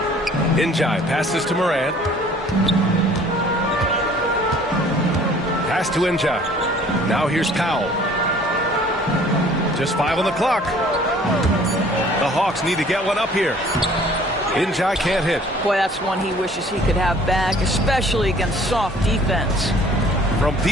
Njai passes to Moran. Pass to Njai. Now here's Powell. Just 5 on the clock. The Hawks need to get one up here. In-Ja can't hit. Boy, that's one he wishes he could have back, especially against soft defense. From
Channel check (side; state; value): both; normal; correlation 0.53